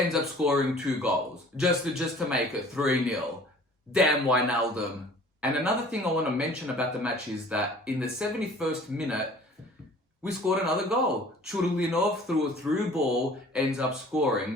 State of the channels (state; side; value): normal; both; correlation 0.49